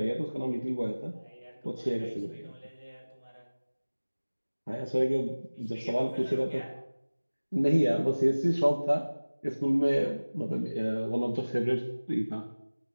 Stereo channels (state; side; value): inverted; both; correlation -1.00